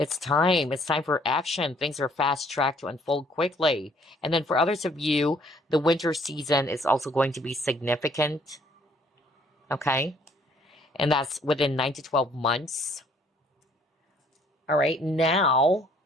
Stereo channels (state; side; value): normal; both; correlation 0.62